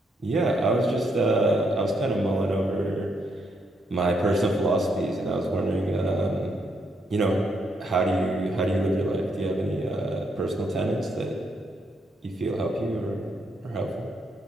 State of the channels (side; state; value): both; normal; correlation 0.76